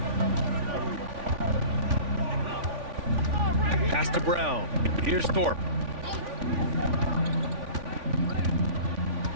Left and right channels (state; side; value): late; left; 3.5 ms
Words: Pass to Brown. Here's Thorpe.